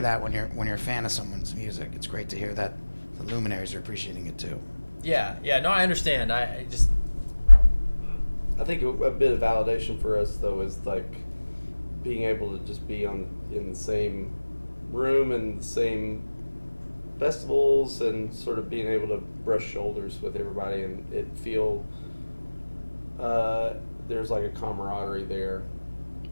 that when you're a fan of someone's music. It's great to hear that the luminaries are appreciating it too. Yeah. No, I understand. I think a bit of validation for us though is like being able to just be in the same room and the same festivals and sort of being able to brush shoulders with everybody, and it feel there's like a camaraderie there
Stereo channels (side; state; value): both; inverted; correlation -1.00